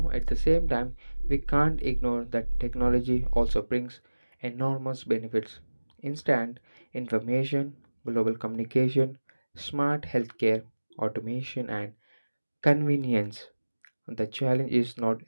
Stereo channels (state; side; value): inverted; both; correlation -1.00